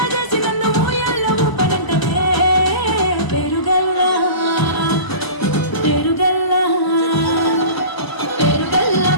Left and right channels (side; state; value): right; late; 1.0 ms